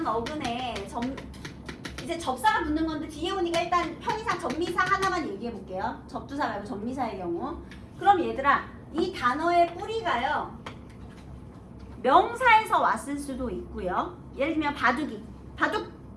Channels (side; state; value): both; identical; correlation 1.00